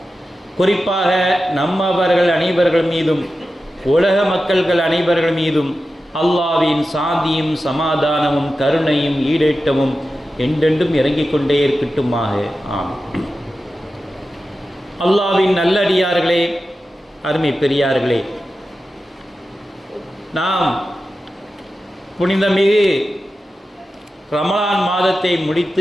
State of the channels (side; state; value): both; normal; correlation 0.92